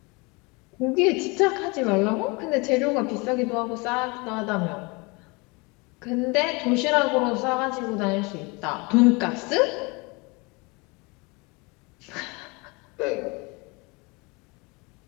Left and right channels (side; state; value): right; quieter; 27.6 dB